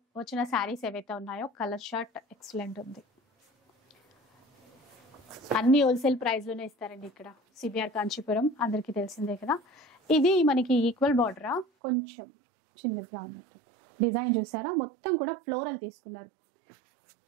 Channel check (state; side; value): drops out; left; at 11.7 s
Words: వచ్చిన శారీస్ ఏవైతే ఉన్నాయో కలర్ షర్ట్ ఎక్సలెంట్ ఉంది. అన్ని హోల్సేల్ ప్రైస్ లోనే ఇస్తారండి ఇక్కడ సిబిఆర్ కాంచీపురం, అందరికీ తెలిసిందే కదా. ఇది మనకి ఈక్వల్ బార్డరా, కొంచెం చిన్నదిగా ఉన్నట్టుంది. డిజైన్ చూసారా, మొత్తం కూడా ఫ్లోరల్ తీసుకున్నారు.